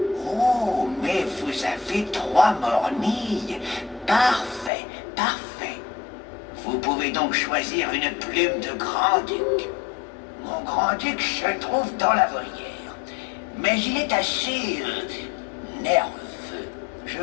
Oh, mais vous avez 3 mornilles. Parfait, parfait. Vous pouvez donc choisir une plume de grand-duc. Mon grand-duc se trouve dans la volière, mais il est assez nerveux. Je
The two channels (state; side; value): drops out; right; at 4.7 s